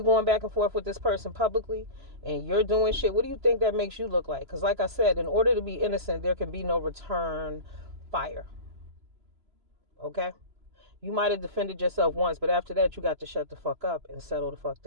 going back and forth with this person publicly and you're doing shit, what do you think that makes you look like? Because like I said, in order to be innocent, there can be no return fire. Okay? You might have defended yourself once, but after that, you got to shut the fuck up and settle the fuck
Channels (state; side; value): late; left; 3.0 ms